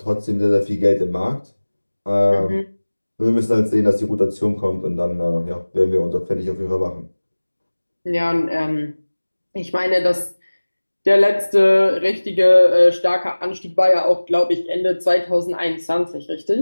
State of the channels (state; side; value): inverted; both; correlation -1.00